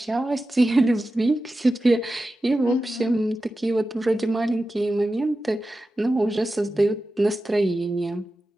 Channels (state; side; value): normal; both; correlation 0.93